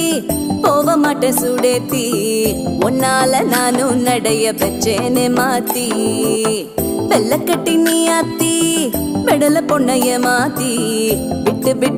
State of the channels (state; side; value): identical; both; correlation 1.00